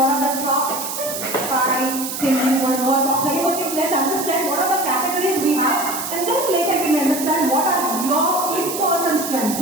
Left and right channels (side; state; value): right; noise; hiss, 6 dB below the sound